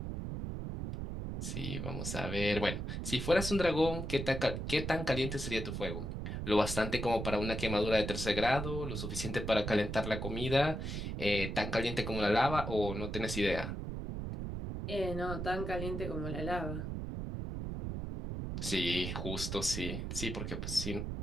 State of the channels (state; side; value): noise; right; rumble, 4 dB below the sound